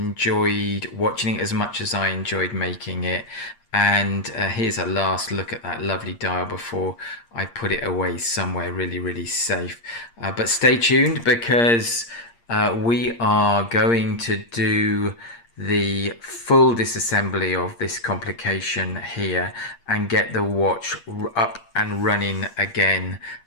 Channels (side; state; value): right; late; 8.6 ms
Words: watching it as much as I enjoyed making it. And here's a last look at that lovely dial before I put it away somewhere really, really safe. But stay tuned, because we are going to do the full disassembly of this complication here and get the watch up and running again,